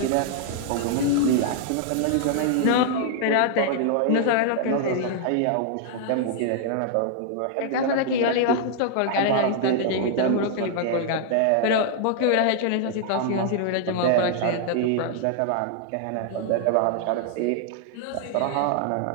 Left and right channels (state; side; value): different; both; correlation 0.00